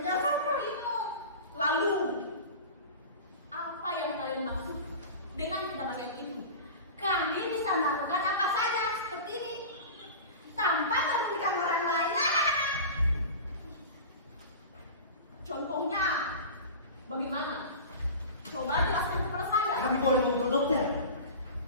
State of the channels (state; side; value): inverted; both; correlation -0.33